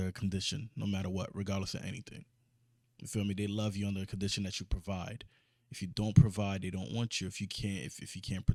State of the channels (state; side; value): identical; both; correlation 1.00